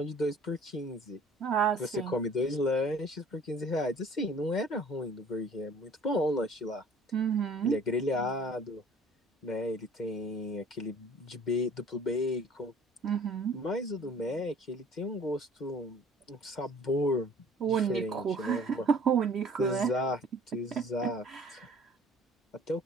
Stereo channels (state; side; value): normal; both; correlation 0.51